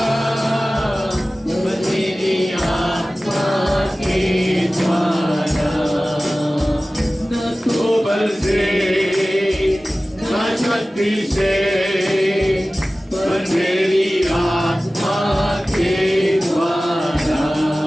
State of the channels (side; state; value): both; normal; correlation 0.97